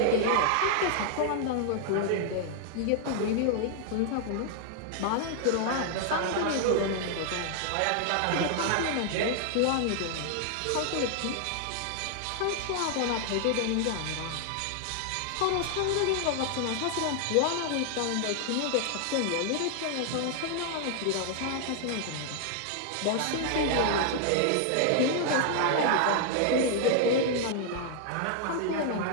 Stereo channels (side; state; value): both; different; correlation 0.00